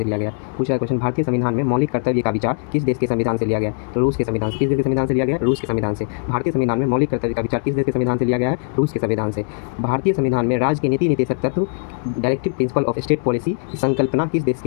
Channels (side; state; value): right; silent; 66 dB below the other